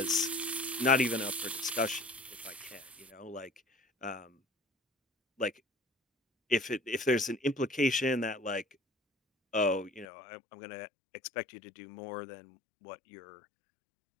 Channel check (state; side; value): drops out; right; at 10.1 s